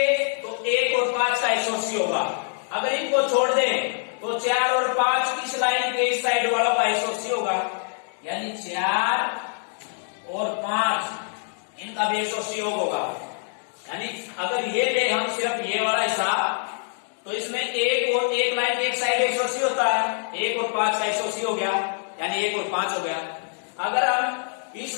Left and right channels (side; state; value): right; silent; 62 dB below the other